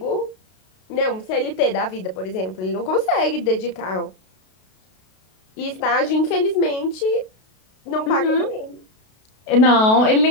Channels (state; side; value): late; right; 32 ms